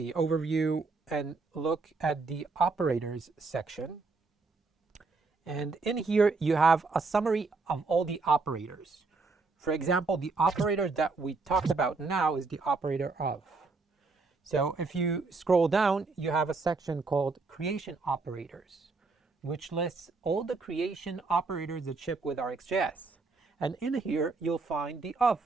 overview and look at the operators section. And in here, you have a summary of all the operators. For example, the operator that we talked about now is the operator of. So if you scroll down, you have a section called creation operators, which lists all the creation operators that ship with RxJS. And in here, you'll find the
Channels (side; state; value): left; quieter; 4.0 dB